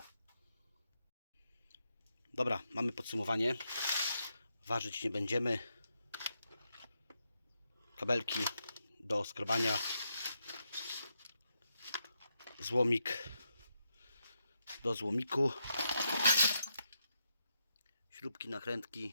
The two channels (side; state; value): both; inverted; correlation -0.82